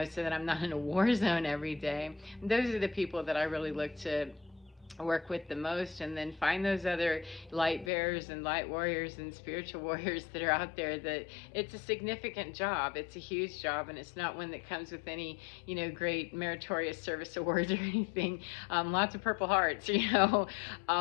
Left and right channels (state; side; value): drops out; right; at 7.9 s